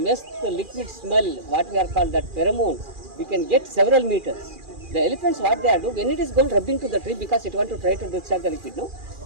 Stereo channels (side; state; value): left; late; 2.4 ms